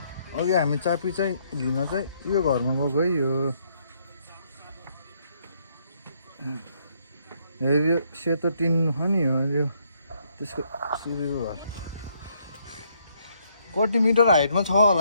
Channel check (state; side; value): inverted; both; correlation -0.71